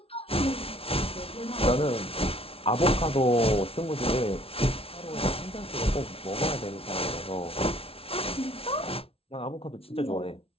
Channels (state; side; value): late; right; 0.27 ms